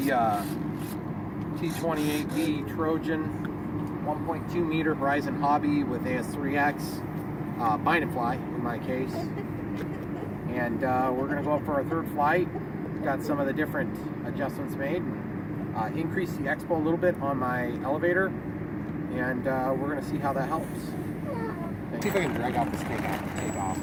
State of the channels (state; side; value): identical; both; correlation 1.00